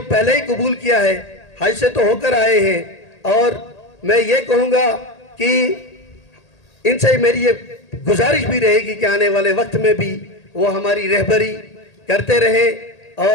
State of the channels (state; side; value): late; right; 1.8 ms